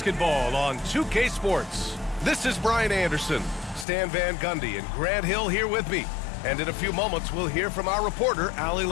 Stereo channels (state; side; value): drops out; right; at 3.9 s